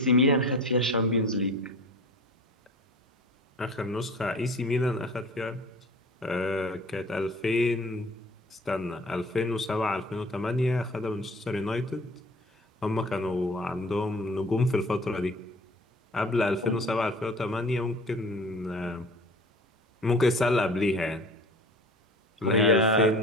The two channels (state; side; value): normal; both; correlation 0.42